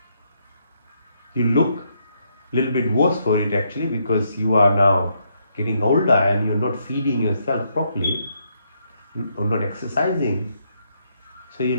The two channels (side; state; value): both; inverted; correlation -0.75